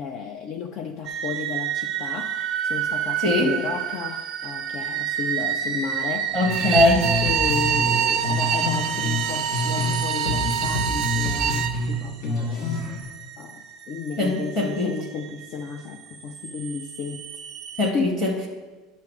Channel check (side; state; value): both; normal; correlation 0.40